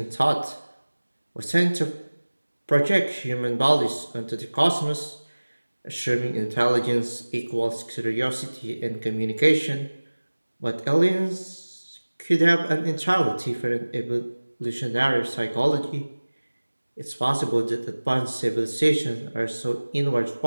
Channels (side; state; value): both; inverted; correlation -1.00